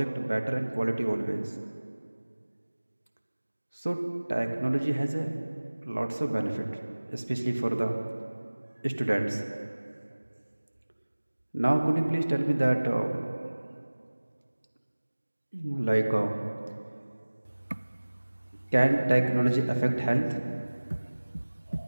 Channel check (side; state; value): both; inverted; correlation -1.00